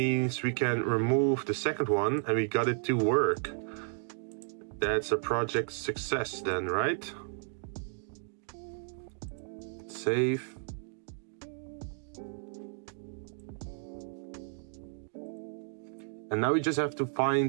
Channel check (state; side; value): silent; left; 56 dB below the other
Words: we can remove the second one and we got it to work. That's a project success then, right? Save. And now we just have to